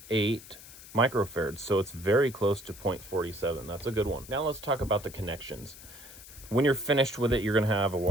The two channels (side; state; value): left; noise; hiss, 17 dB below the sound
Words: microfarads, so it's very close to 0.47. That's a good one. Now let's talk about the connections. When you're finished with it, you're going to have a